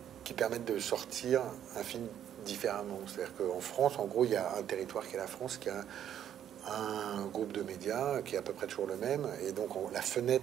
qui permettent de sortir un film différemment. C'est-à-dire qu'en France, en gros, il y a un territoire qui est la France, qui a un groupe de médias qui est à peu près toujours le même. Et donc, la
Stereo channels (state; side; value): quieter; left; 10.1 dB